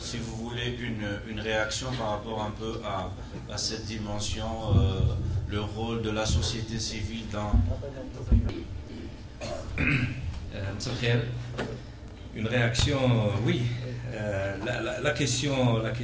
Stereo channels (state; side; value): identical; both; correlation 1.00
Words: vous voulez une réaction par rapport un peu à cette dimension, le rôle de la société civile dans... Une réaction, oui. La